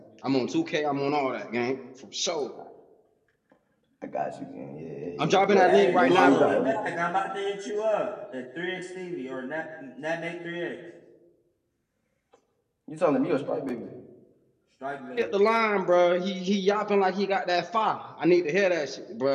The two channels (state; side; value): identical; both; correlation 1.00